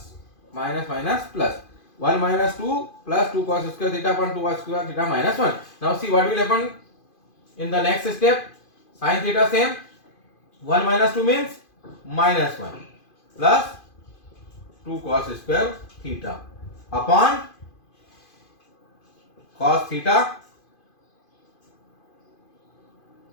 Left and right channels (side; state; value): right; late; 2.5 ms